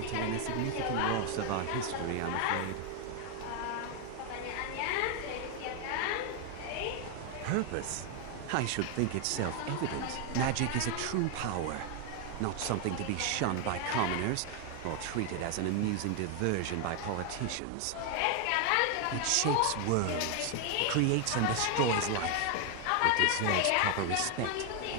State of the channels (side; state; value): both; different; correlation 0.01